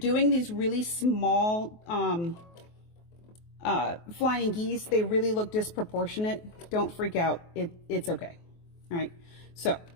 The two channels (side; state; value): right; late; 23 ms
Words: these really small flying geese, they really look disproportionate. Don't freak out. It's okay. All right. So